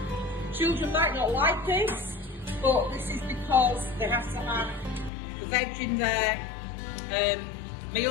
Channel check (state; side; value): drops out; right; at 5.1 s